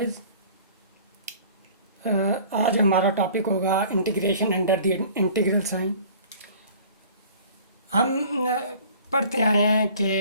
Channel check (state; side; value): inverted; both; correlation -0.48